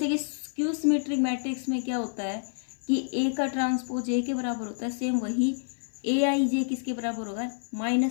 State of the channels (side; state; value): right; silent; 56 dB below the other